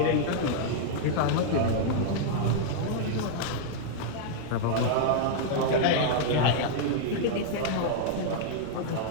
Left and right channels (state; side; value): different; both; correlation -0.01